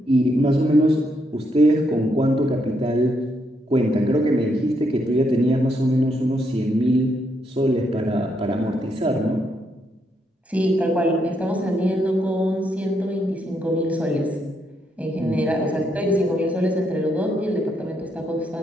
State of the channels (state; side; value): normal; both; correlation 0.77